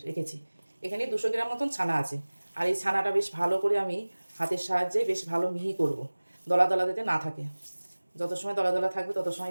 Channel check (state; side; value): inverted; both; correlation -1.00